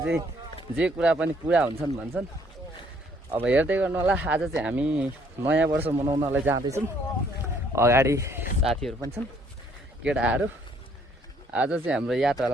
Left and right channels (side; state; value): both; normal; correlation 0.65